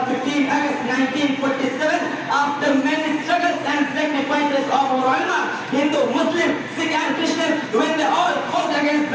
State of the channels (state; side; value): identical; both; correlation 1.00